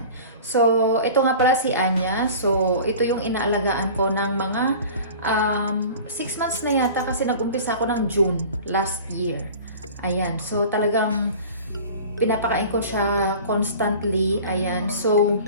So ito nga pala si Anya. So ito yung inaalagaan ko ng mga 6 months na yata kasi nag-umpisa ako ng June last year. Ayan. So talagang pinapakain ko siya constantly. Ayan. So,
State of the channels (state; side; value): inverted; both; correlation -0.40